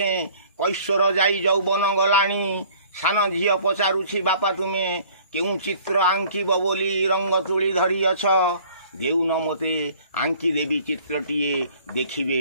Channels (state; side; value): inverted; both; correlation -0.53